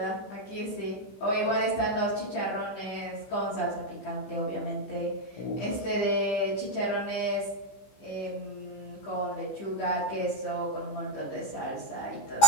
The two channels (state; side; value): late; right; 15 ms